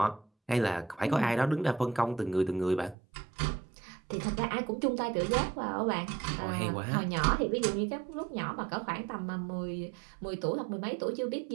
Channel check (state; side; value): drops out; left; at 3.0 s